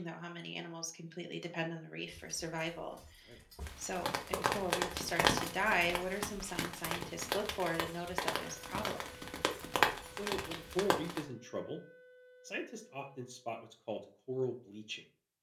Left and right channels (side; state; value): both; identical; correlation 1.00